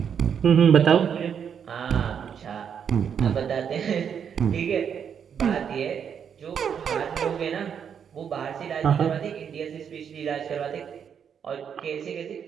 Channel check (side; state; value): left; quieter; 7.7 dB